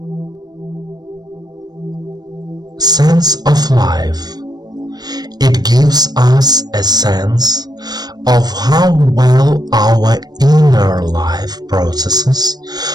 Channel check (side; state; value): left; late; 0.19 ms